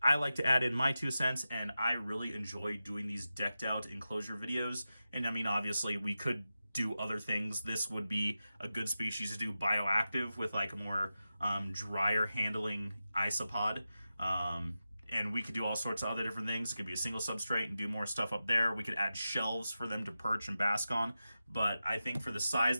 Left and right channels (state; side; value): inverted; both; correlation -0.92